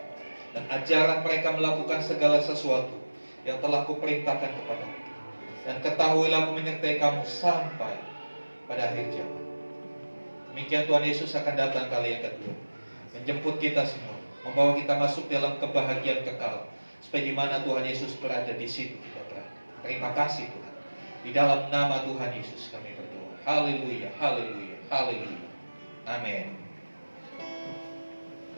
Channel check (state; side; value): inverted; both; correlation -1.00